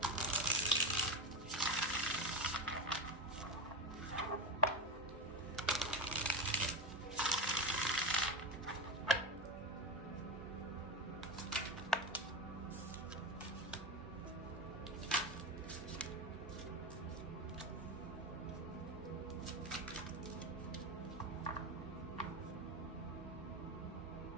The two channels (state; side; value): normal; both; correlation 0.18